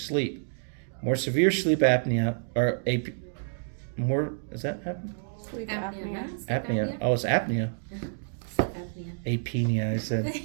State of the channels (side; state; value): left; silent; digital silence